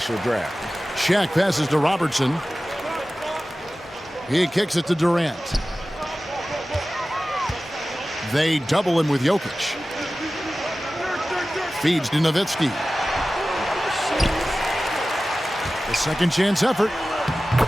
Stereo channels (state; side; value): normal; both; correlation 0.96